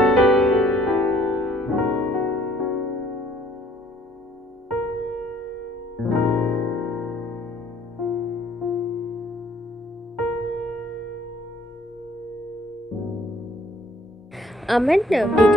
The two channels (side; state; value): both; normal; correlation 0.60